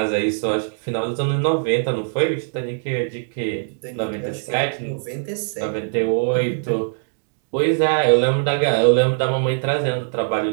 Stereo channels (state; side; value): silent; left; digital silence